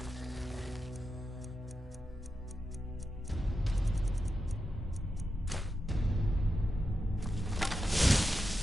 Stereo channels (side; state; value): both; normal; correlation 0.89